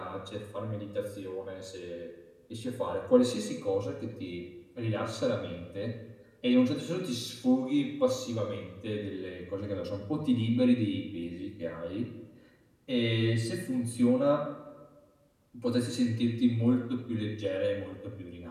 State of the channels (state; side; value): identical; both; correlation 1.00